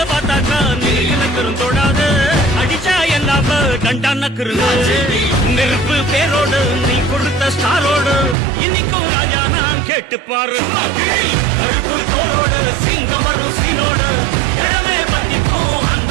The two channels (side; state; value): left; drops out; at 8.3 s